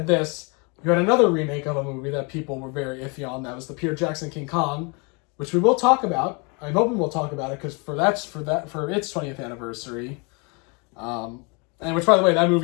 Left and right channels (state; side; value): quieter; right; 31.3 dB